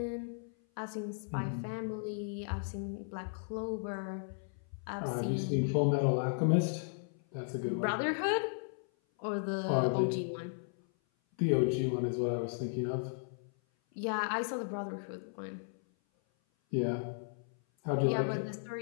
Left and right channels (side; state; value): right; silent; 54 dB below the other